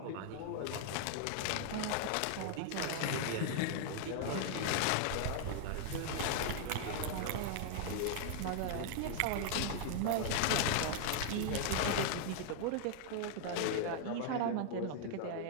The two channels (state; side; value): different; both; correlation -0.01